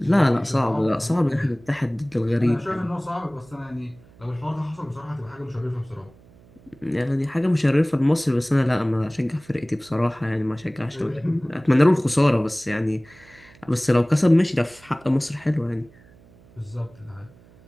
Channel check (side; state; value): right; noise; hum, 26 dB below the sound